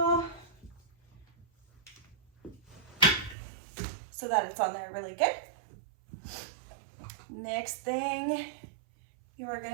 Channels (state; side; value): drops out; left; at 3.4 s